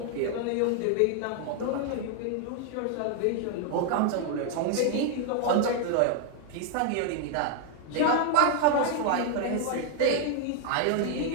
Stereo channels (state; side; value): different; both; correlation 0.00